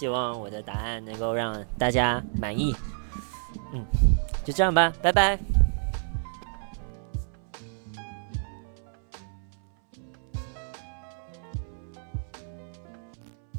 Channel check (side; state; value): left; silent; 58 dB below the other